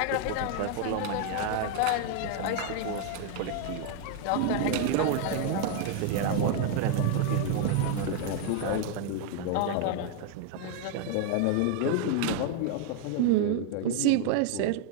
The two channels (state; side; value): different; both; correlation 0.00